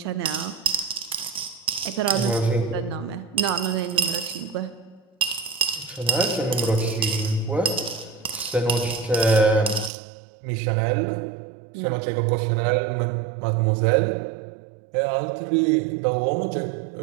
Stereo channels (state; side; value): drops out; left; at 9.9 s